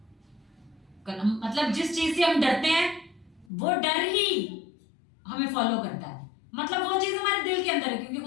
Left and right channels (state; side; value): drops out; right; at 3.5 s